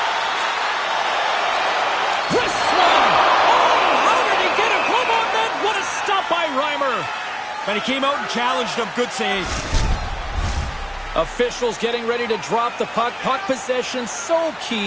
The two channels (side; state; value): both; identical; correlation 1.00